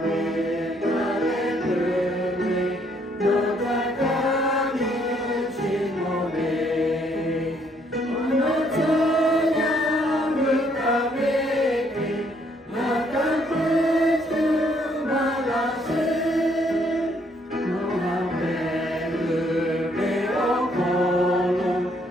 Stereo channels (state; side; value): normal; both; correlation 0.68